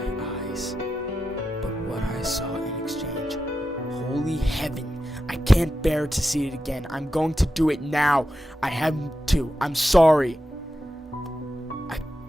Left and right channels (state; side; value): normal; both; correlation 0.90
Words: eyes, but what I saw in exchange, holy heaven, I can't bear to see it again. I'm going to do it now. I have to. I'm sorry. I